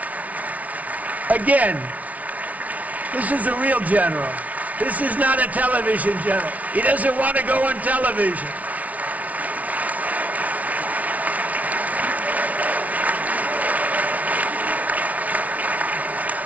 Again, this is a real general. This is not a television general. He doesn't want to go on television.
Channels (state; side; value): late; left; 0.070 ms